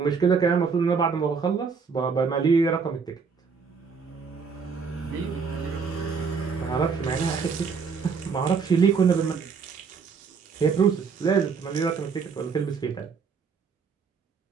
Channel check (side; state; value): left; quieter; 5.6 dB